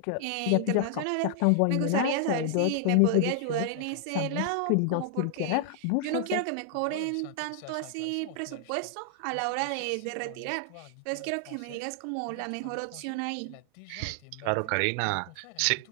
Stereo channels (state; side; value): different; both; correlation 0.00